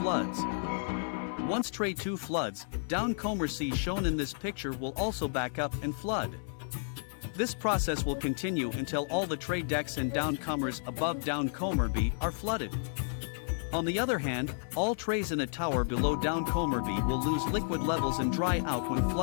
floods. Once tray 2 floods, downcomer C shown in this picture will also back up and flood. This process will continue until all the tray decks and downcomers above downcomer B are flooded. On the other hand, all trays in a tower below downcomer B will lose liquid levels and dry out when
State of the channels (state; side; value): silent; right; 56 dB below the other